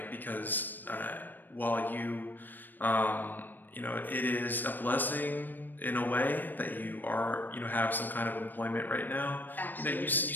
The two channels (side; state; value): right; late; 0.090 ms